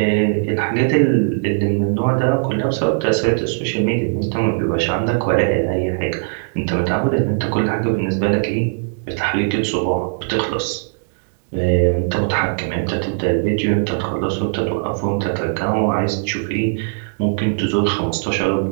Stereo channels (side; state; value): left; silent; digital silence